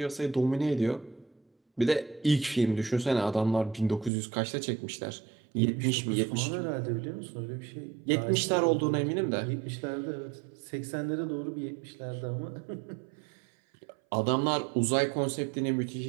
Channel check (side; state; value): left; drops out; at 4.1 s